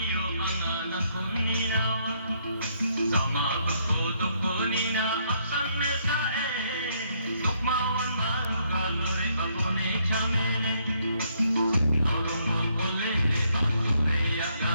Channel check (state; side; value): inverted; both; correlation -0.71